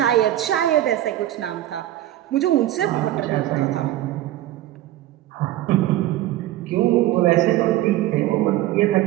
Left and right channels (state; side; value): quieter; left; 14.2 dB